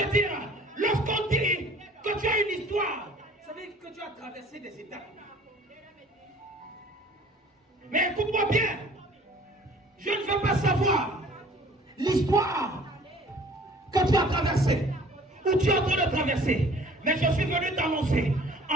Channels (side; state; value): both; normal; correlation 0.51